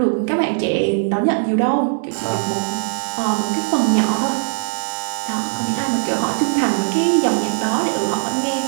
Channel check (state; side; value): silent; left; digital silence